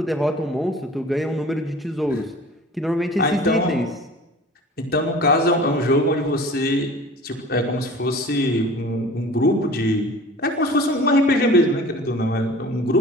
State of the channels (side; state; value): both; normal; correlation 0.43